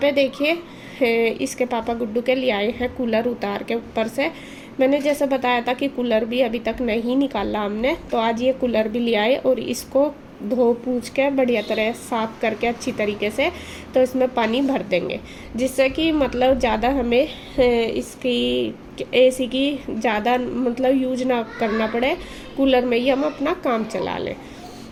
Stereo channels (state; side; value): identical; both; correlation 1.00